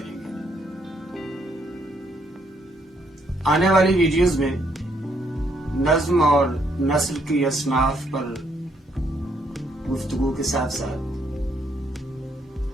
گے۔ آنے والی ویڈیوز میں نظم اور نثر کی اصناف پر گفتگو کے ساتھ ساتھ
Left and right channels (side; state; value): both; normal; correlation 0.72